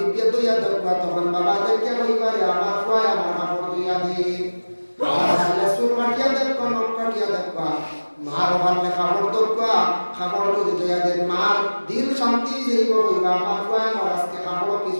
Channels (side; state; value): both; inverted; correlation -1.00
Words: দইয়া দেখবা তখন বাবা দেখে কইবারে আমার কয় আমার কাপড় দইয়া দি আর সুর কাটিয়া দেখবা নখ কাটিয়া দেখবা মার ভালে কাপড় দেখবা কাপড় যদি দইয়া দেন মার দিল শান্তি যাইব কইবা আমার কয় আমার আজকে কাপড়